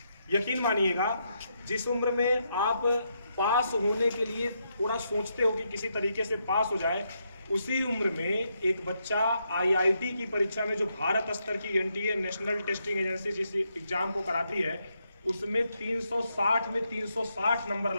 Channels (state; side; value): inverted; both; correlation -0.80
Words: यकीन मानिएगा, जिस उम्र में आप पास होने के लिए थोड़ा सोचते हो कि किसी तरीके से पास हो जाए, उसी उम्र में एक बच्चा आईआईटी की परीक्षा में, जो भारत स्तर की एनटीए नेशनल टेस्टिंग एजेंसी जिस एग्जाम को कराती है, उसमें 360 में 360 नंबर